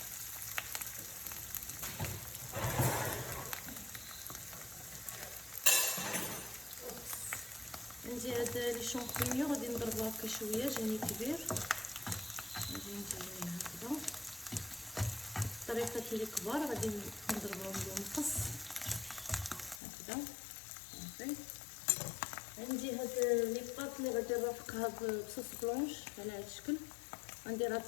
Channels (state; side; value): drops out; right; at 19.8 s